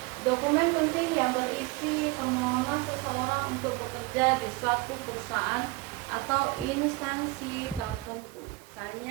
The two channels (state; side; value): quieter; left; 22.1 dB